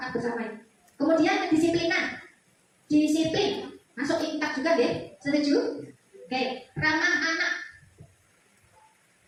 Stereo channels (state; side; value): identical; both; correlation 1.00